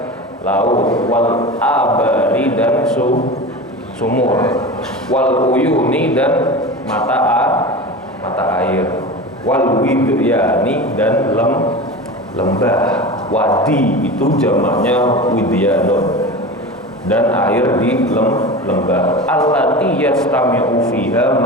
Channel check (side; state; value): both; normal; correlation 0.30